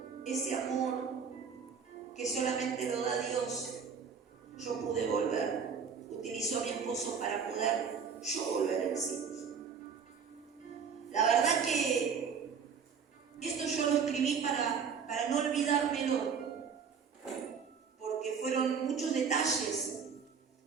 ese amor que solamente lo da Dios, yo pude volver. Utilizó a mi esposo para poder yo volver en sí. La verdad que esto yo lo escribí para no olvidármelo, porque fueron muchos detalles,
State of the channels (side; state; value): left; quieter; 6.4 dB